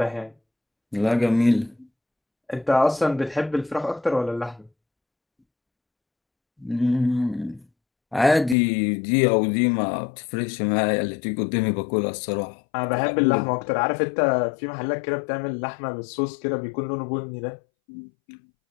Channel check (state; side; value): drops out; right; at 8.6 s